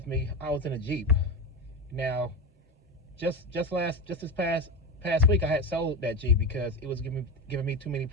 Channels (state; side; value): normal; both; correlation 0.19